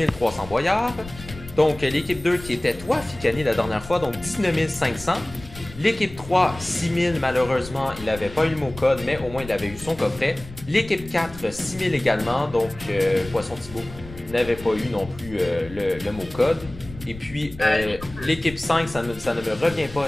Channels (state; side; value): noise; left; rumble, 15 dB below the sound